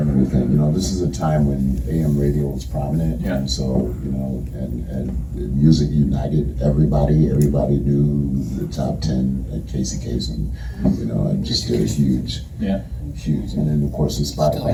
everything. You know, this is a time when AM radio was prominent, Yeah. and so you know, and music united everybody. Everybody knew the top 10 at Casey Kasem, you know, and just did a huge. Yeah. Huge, and then of course the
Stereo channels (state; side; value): identical; both; correlation 1.00